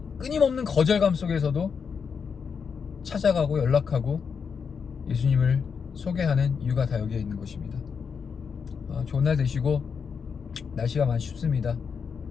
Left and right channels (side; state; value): right; quieter; 6.2 dB